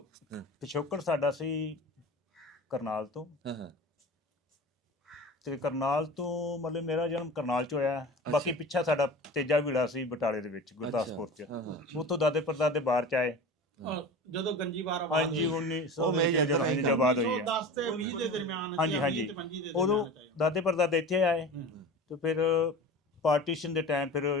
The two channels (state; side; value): normal; both; correlation 0.34